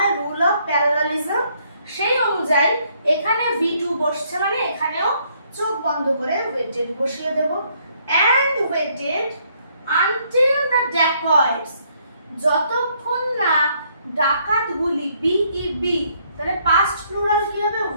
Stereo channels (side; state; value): both; inverted; correlation -0.69